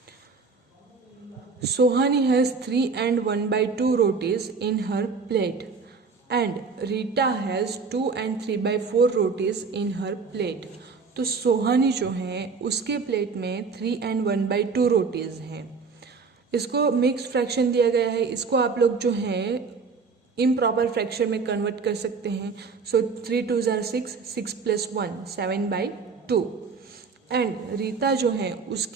Sohani has 3 and 1/2 rotis in her plate and Rita has 2 and 3/4 rotis in her plate. तो सोहानी जो है उसके प्लेट में 3 and 1/2 रोटीज हैं. इसको मिक्स फ्रैक्शन दिया गया है, इसको आप लोग जो है इम्प्रॉपर फ्रैक्शन में कन्वर्ट कर सकते हैं. सो 3 2 ज़ार 6, 6 + 1 7/2. एंड रीता जो है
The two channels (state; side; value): quieter; left; 4.9 dB